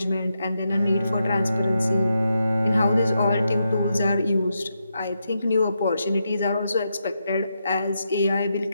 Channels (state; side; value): inverted; both; correlation -0.84